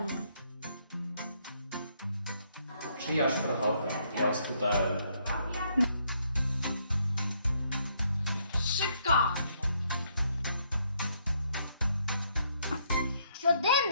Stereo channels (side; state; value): both; inverted; correlation -0.72